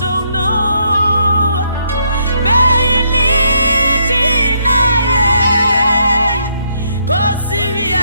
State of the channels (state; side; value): inverted; both; correlation -0.74